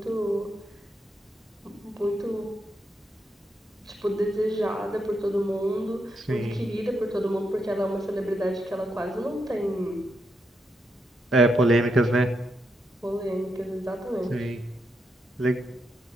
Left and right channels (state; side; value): normal; both; correlation 0.82